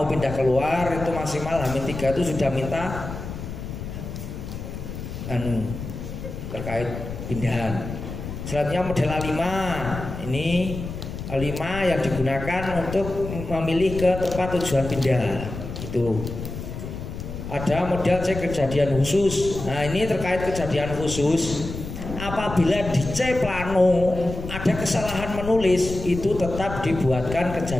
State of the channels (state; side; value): noise; left; rumble, 8 dB below the sound